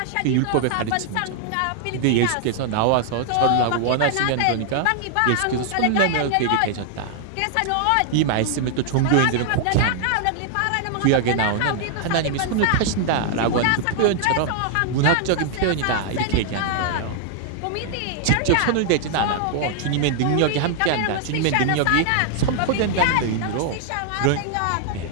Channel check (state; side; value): different; both; correlation -0.01